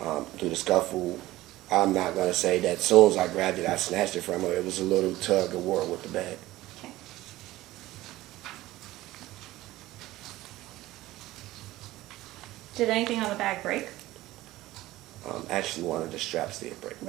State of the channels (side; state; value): left; quieter; 16.9 dB